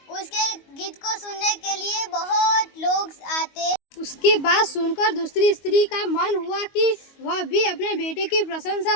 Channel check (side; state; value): right; late; 22 ms